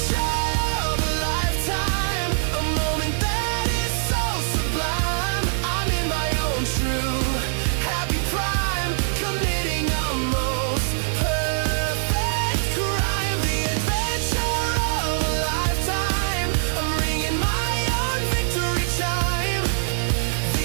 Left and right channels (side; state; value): left; silent; digital silence